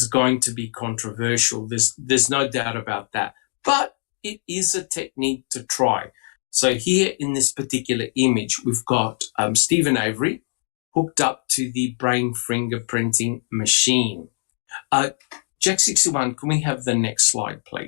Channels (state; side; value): silent; right; 64 dB below the other